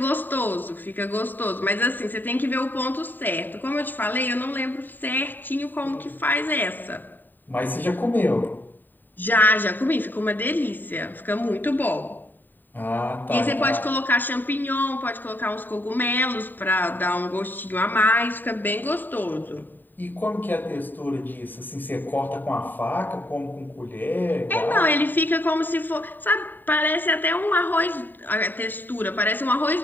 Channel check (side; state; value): right; late; 0.090 ms